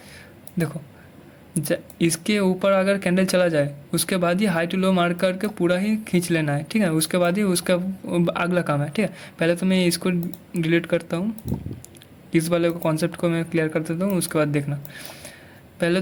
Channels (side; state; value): both; identical; correlation 1.00